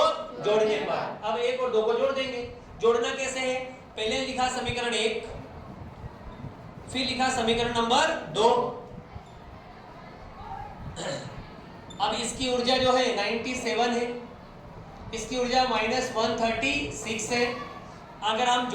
जोड़ने पर, अब 1 और 2 को जोड़ देंगे। जोड़ना कैसे है, पहले लिखा समीकरण 1, फिर लिखा समीकरण नंबर 2। अब इसकी ऊर्जा जो है 97 है, इसकी ऊर्जा -136 है। अगर हम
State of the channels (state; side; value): identical; both; correlation 1.00